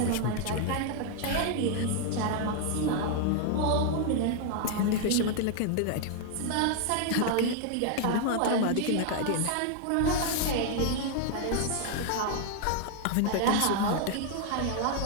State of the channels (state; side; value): different; both; correlation 0.00